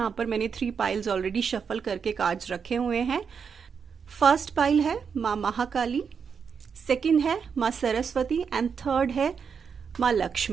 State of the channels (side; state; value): left; quieter; 6.4 dB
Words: पर मैंने 3 पाइल्स ऑलरेडी शफल करके कार्ड्स रखे हुए हैं। फर्स्ट पाइल है माँ महाकाली, सेकंड है माँ सरस्वती एंड थर्ड है माँ